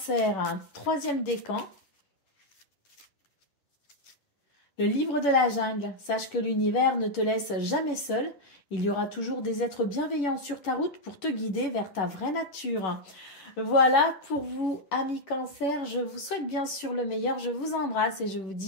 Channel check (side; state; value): right; late; 11 ms